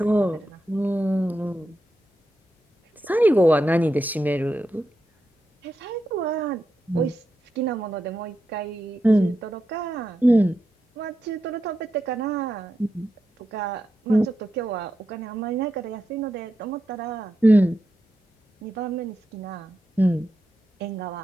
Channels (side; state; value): both; normal; correlation 0.87